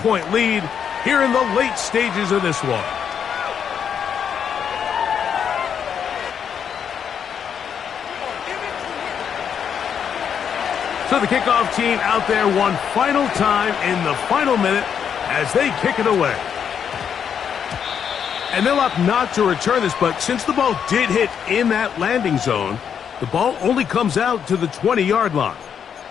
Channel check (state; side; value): quieter; right; 7.8 dB